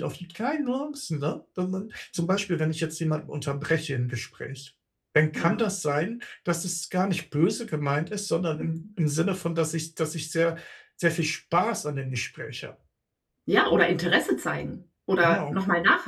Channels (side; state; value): both; identical; correlation 1.00